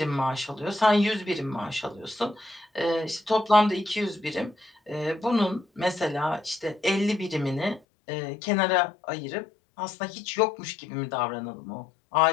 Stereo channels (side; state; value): right; drops out; at 7.8 s